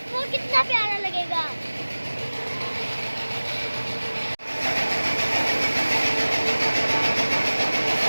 कितना प्यारा लगेगा।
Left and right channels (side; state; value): both; inverted; correlation -1.00